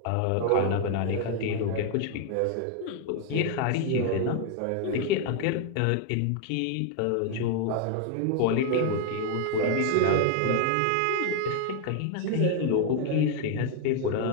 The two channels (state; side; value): different; both; correlation 0.00